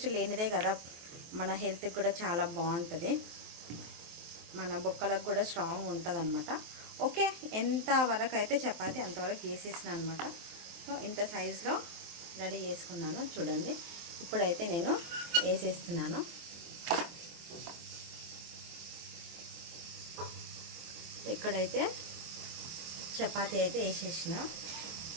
లేనిదే కదా మన హెల్త్కి కూడా చాలా బాగుంటుంది, మన బొక్కలకు కూడా స్ట్రాంగ్ ఉంటుంది అనమాట. ఓకే, ఎంత వరకు అయితే చపాతీ అంతవరకు చేసేసిన అనమాట. సో ఇంత సైజులో రెడీ చేసుకున్నాను. చూడండి, ఇప్పుడైతే నేను వేసేస్తున్నాను. ఇక్కడైతే చపాతీ అయితే వేసేసిన.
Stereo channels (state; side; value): late; left; 23 ms